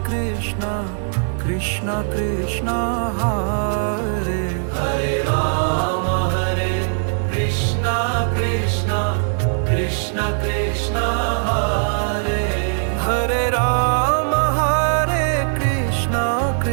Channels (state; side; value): silent; left; digital silence